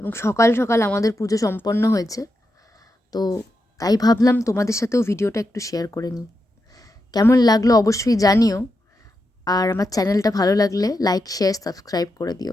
সকাল সকাল আমাদের পুজো সম্পন্ন হয়েছে। তো তাই ভাবলাম তোমাদের সাথেও ভিডিওটা একটু শেয়ার করে নিই। কেমন লাগলো অবশ্যই জানিও, আর আমার চ্যানেলটা ভালো লাগলে লাইক, শেয়ার, সাবস্ক্রাইব করে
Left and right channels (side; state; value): both; normal; correlation 0.86